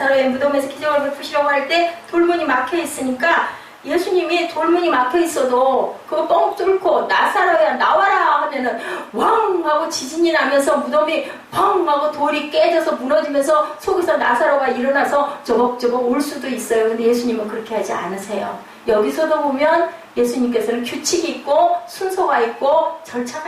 무덤에서 기적을 베푸시려고 할 때 돌문이 막혀 있으니까 예수님이 돌문이 막혀 있어도 그거 뻥 뚫고 나사로야 나와라 하면은 왕 하고 지진이 나면서 무덤이 펑 하고 돌이 깨져서 무너지면서 속에서 나사로가 일어나서 저벅저벅 올 수도 있어요. 근데 예수님은 그렇게 하지 않으세요. 여기서도 보면 예수님께서는 규칙이 있고 순서가 있고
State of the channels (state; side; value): identical; both; correlation 1.00